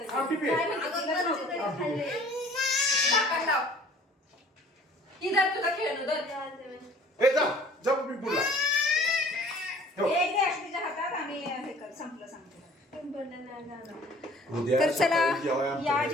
आमटी पे. झाकण लाव. इधर तुझा खेळणं धर. ए जा जा मी पुढला. ठेव. एक दे अक्षतीच्या हातात आणि हे कर संपलं सांगते. उद्या तर चला सकाळी जेवायला या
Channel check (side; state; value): both; normal; correlation 0.51